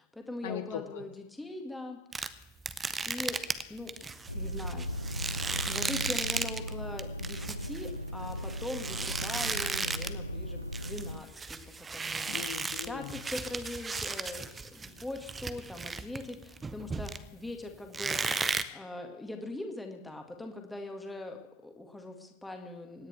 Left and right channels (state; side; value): normal; both; correlation 0.47